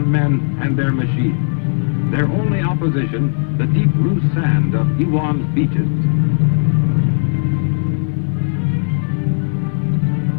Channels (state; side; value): silent; right; 68 dB below the other